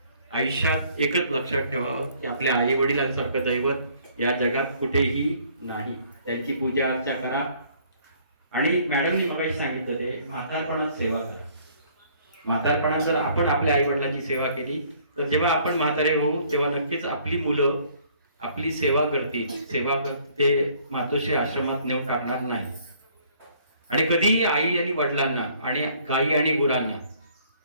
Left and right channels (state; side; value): inverted; both; correlation -0.60